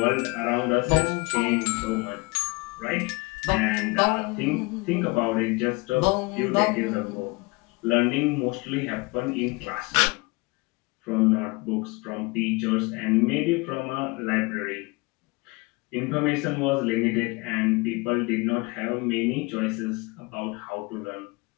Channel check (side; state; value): right; quieter; 26.2 dB